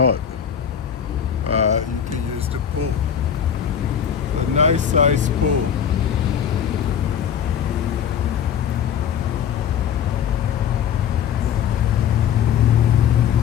you can use the pool. It's a nice size pool.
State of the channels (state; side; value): quieter; right; 8.4 dB